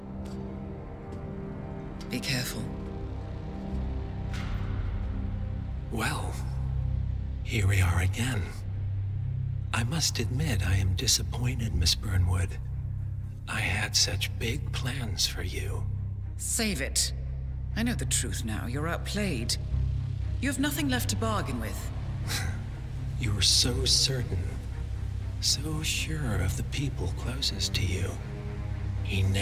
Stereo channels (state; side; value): identical; both; correlation 1.00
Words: Be careful. Well, here we are again. I must admit I am disappointed, Miss Burnwood. I had such big plans for you. Save it. I know the truth now. You're outplayed. You have nothing left to bargain with. You were so certain, so sure of the people closest to you. He